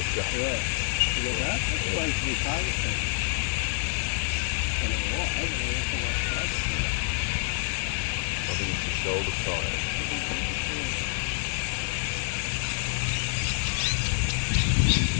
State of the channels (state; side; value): silent; right; 60 dB below the other